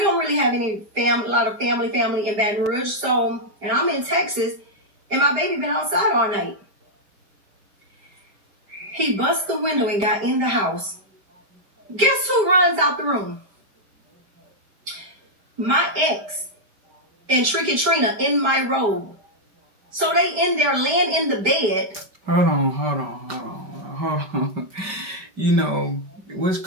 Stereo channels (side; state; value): left; late; 5.1 ms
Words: don't really have a lot of family in Baton Rouge. So, and I'm in Texas and my baby been outside all night. He bust the window and got in the house. Guess who runs out the room? My ex and Tricky Trina in my robe. So they in there laying in the bed. Hold on. You know, what's